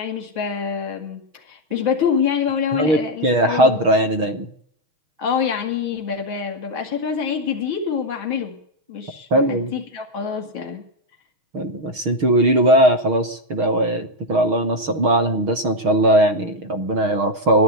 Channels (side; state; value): left; late; 6.4 ms